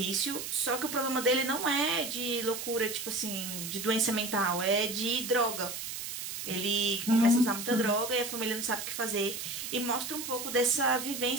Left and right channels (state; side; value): noise; right; hiss, 6 dB below the sound